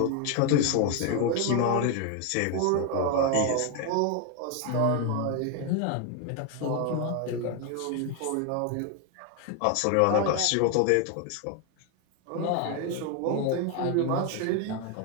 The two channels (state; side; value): different; both; correlation 0.01